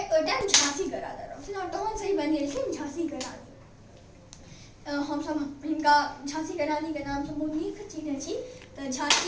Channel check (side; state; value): both; identical; correlation 1.00